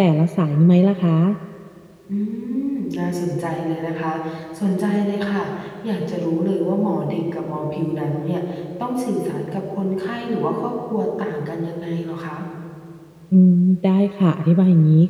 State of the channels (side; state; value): both; identical; correlation 1.00